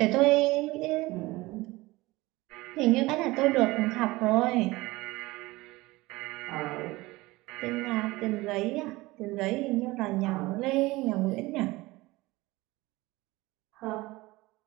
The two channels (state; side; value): quieter; left; 20.6 dB